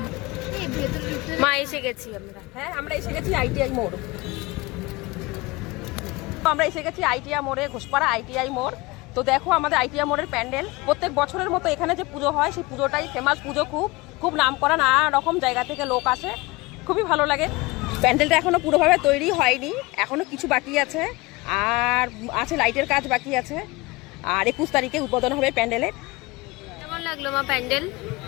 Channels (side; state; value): right; quieter; 23.2 dB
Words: মা এসে গেছি আমরা। হ্যাঁ আমরা এসে গেছি ITI মোড়। আমরা এসে গেছি ITI মোড়ে, ঘোষপাড়া ITI মোড়। তো দেখো আমাদের ITI মোড়ের প্যান্ডেল প্রত্যেক বছরের মতো এখানে যে পুজো হয় সেই পুজোটাই ফেমাস পুজো, খুব নাম করা, নানা রকম জায়গা থেকে লোক আসে, খুবই ভালো লাগে। প্যান্ডেলটা এখনো পুরোভাবে তৈরি হয়নি, এখনো কিছু বাকি আছে, আর আছে লাইটের কাজ বাকি আছে। আর 21 তারিখে উদ্বোধন হবে প্যান্ডেলের। কেমন লাগলো মা প্যান্ডেল?